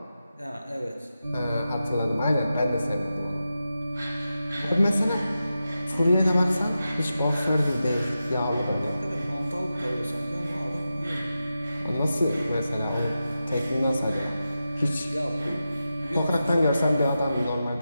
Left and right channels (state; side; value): inverted; both; correlation -0.91